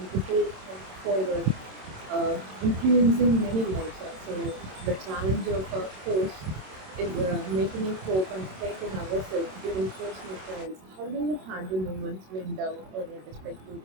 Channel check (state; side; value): late; left; 27 ms